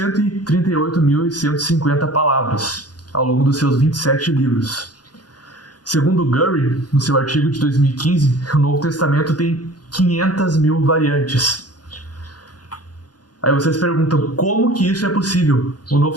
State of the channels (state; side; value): late; right; 0.69 ms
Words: palavras ao longo dos seus 27 livros. Segundo Gurry, no seu artigo de 2015, o Novo Testamento tem 500.000 variantes. Aí vocês perguntam, como que isso é possível? O